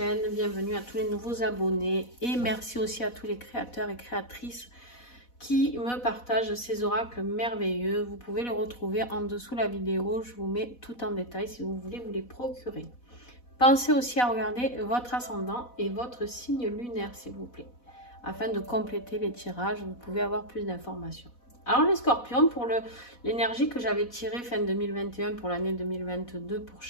Bienvenue à tous les nouveaux abonnés et merci aussi à tous les créateurs et créatrices qui me partagent ces oracles merveilleux. Vous pouvez les retrouver en dessous de la vidéo. Je vous mets tout en détail si vous voulez vous les procurer. Pensez aussi à regarder votre ascendant et votre signe lunaire s'il vous plaît. Afin de compléter les tirages, vous pouvez avoir plus d'informations. Alors les scorpions, pour l'énergie que j'avais tirée fin 2021 pour l'année 2022 pour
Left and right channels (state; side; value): late; right; 4.1 ms